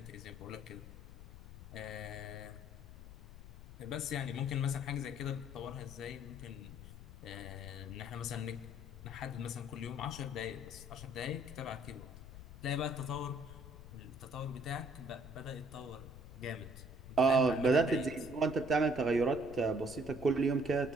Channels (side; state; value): left; noise; rumble, 14 dB below the sound